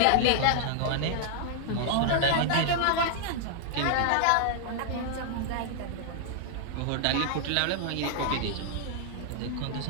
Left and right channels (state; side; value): different; both; correlation -0.01